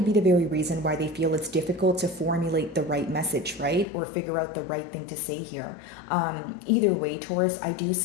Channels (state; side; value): drops out; right; at 3.9 s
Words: be the very reason why they feel it's difficult to formulate the right message, right? Or figure out the right thing to say here. Either way, Taurus, I do